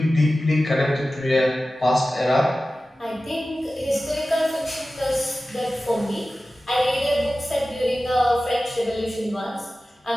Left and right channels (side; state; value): both; normal; correlation 0.95